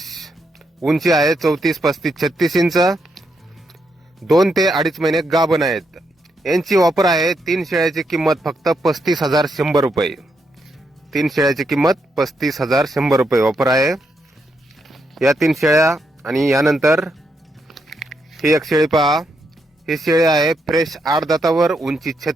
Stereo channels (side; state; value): both; normal; correlation 0.80